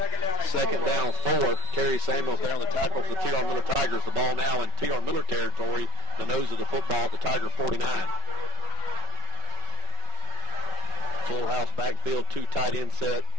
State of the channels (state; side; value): late; left; 5.3 ms